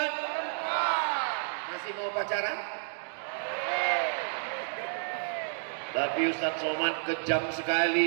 Masih mau pacaran? Tapi Ustaz Somad kejam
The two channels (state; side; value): silent; left; digital silence